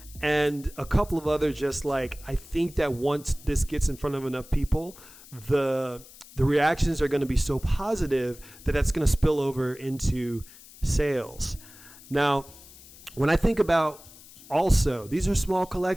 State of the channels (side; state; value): left; noise; hiss, 21 dB below the sound